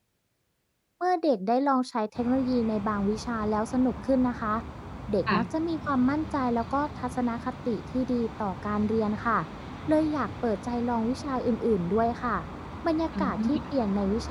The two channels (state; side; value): identical; both; correlation 1.00